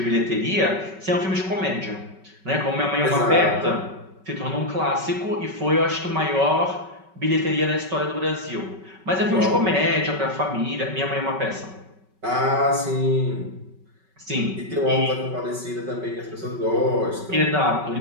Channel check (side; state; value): left; late; 5.3 ms